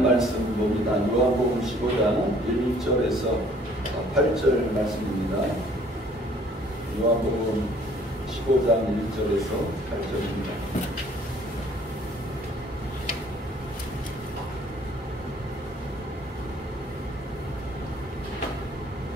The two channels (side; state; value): both; normal; correlation 0.58